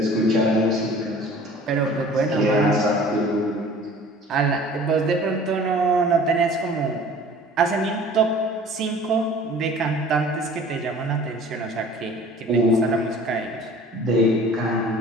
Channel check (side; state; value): both; normal; correlation 0.47